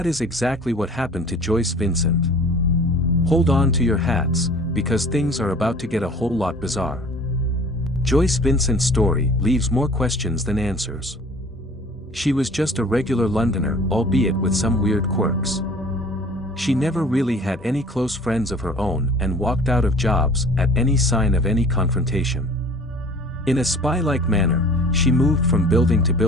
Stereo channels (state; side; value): normal; both; correlation 0.47